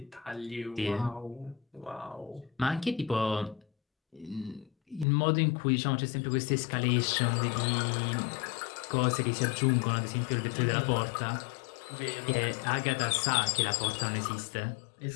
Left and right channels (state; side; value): drops out; right; at 5.1 s